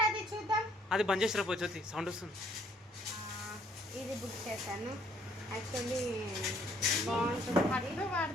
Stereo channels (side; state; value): both; normal; correlation 0.64